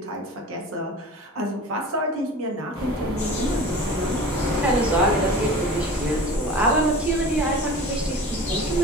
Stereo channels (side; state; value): both; normal; correlation 0.37